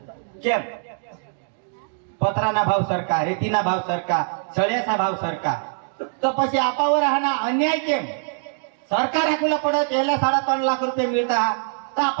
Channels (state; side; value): silent; left; digital silence